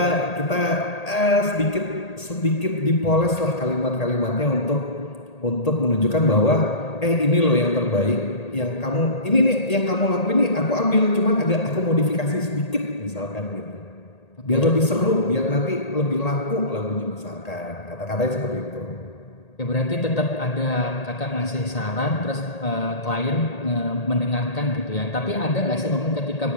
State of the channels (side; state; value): right; late; 1.8 ms